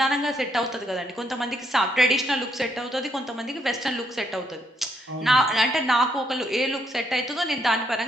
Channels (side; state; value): both; normal; correlation 0.74